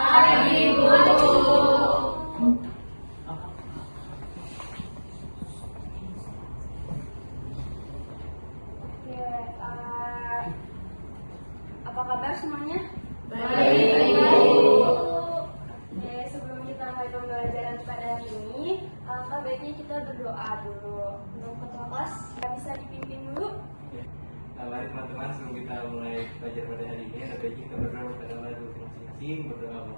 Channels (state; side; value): inverted; both; correlation -1.00